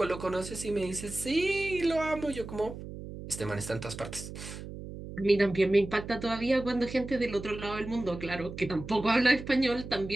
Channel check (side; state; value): right; noise; hum, 11 dB below the sound